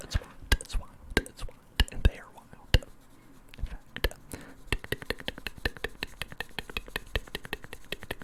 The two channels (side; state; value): both; identical; correlation 1.00